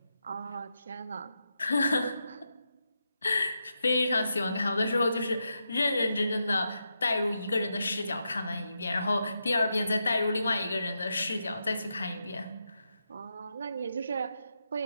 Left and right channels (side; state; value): both; inverted; correlation -0.85